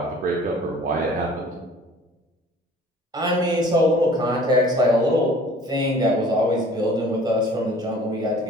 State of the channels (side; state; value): both; normal; correlation 0.49